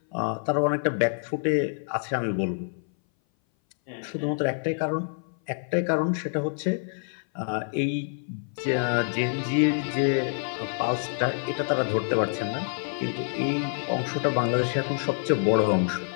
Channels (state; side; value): silent; right; 58 dB below the other